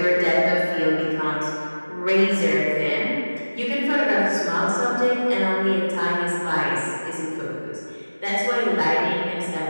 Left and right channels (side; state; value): both; inverted; correlation -1.00